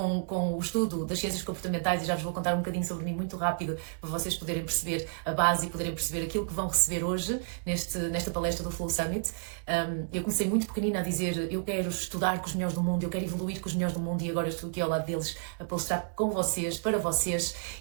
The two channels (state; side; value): silent; left; digital silence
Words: o estudo das ciências comportamentais, e já vos vou contar um bocadinho sobre mim muito rápido, para vocês poderem perceber a base e poderem perceber aquilo que vão receber hoje nesta palestra do Flow Summit. Eu comecei muito pequenina a dizer, eu quero estudar com os melhores do mundo, eu quero evoluir com os melhores do mundo, e agora estou aqui ao lado deles a palestrar com vocês, para vocês,